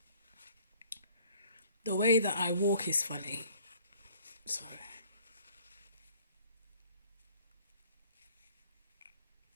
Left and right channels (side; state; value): both; inverted; correlation -0.55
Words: The way that I walk is funny. Sorry.